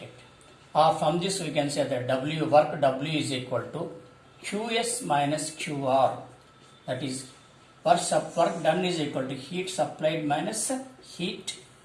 Or from this we can say that work W is equal to Qs minus QR, that is work done is equal to heat supplied minus heat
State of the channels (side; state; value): both; identical; correlation 1.00